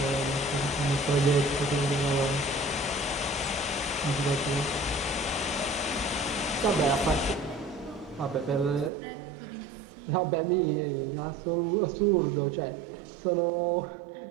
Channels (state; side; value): drops out; left; at 8.9 s